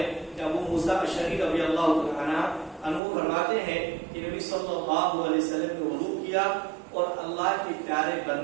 کہ ابو موسیٰ اشعری رضی اللہ عنہ فرماتے ہیں کہ نبی صلی اللہ علیہ وسلم نے وضو کیا اور اللہ کے پیارے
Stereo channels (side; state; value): left; drops out; at 3.0 s